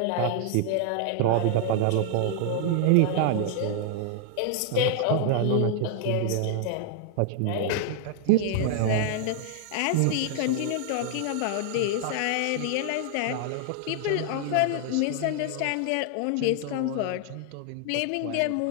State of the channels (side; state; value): both; different; correlation 0.00